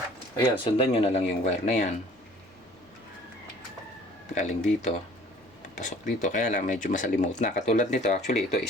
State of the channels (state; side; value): normal; both; correlation 0.52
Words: Ayan, sundan nyo na lang yung wire na yan. Galing dito. Pasok dito. Kaya lang, medyo masalimuot na. Katulad nito, actually, ito